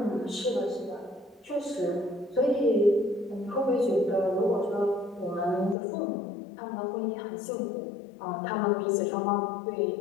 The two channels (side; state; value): right; drops out; at 5.8 s